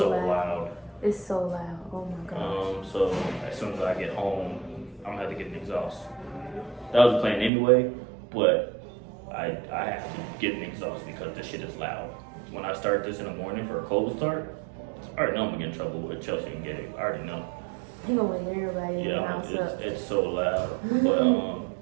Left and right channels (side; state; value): left; drops out; at 7.5 s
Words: It's so loud. Oh my gosh. So as soon as I get home, I'm gonna have to get an exhaust. That was the plan anyway, but I have to get an exhaust because this shit is loud. When I start this in the morning for a cold start, I already know I'm gonna get in trouble with Chelsea and Gabe. I already know. He gonna wake everybody in the house up. It's so loud. But